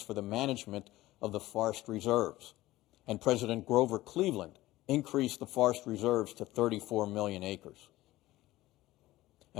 for the management of the forest reserves. And President Grover Cleveland increased the forest reserves to 34 million acres.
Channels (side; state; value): right; quieter; 17.0 dB